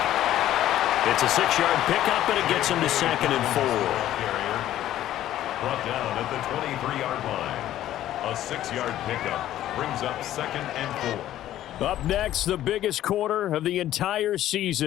It's a 6-yard pickup, and it gets him to 2nd and 4. Brought down at the 23-yard line. A 6-yard pickup brings up 2nd and 4. Up next, the biggest quarter of the entire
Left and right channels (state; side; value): quieter; right; 12.9 dB